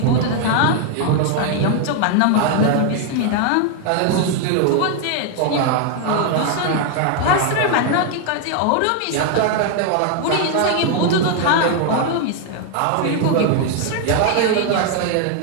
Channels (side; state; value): both; different; correlation 0.00